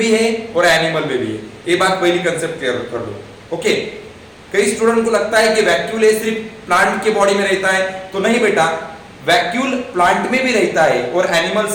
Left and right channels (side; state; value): both; identical; correlation 1.00